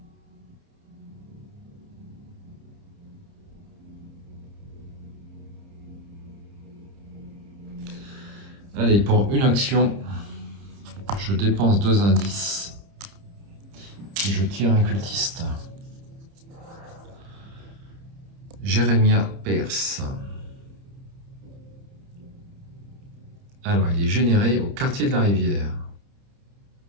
Allez, pour une action, je dépense 2 indices et je tire un cultiste. Jérémia Pierce. Alors, il est généré au quartier de la Rivière.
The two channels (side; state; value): left; late; 30 ms